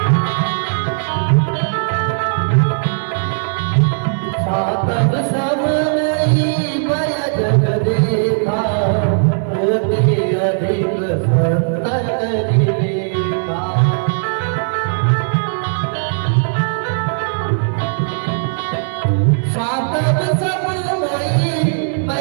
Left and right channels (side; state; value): left; silent; 65 dB below the other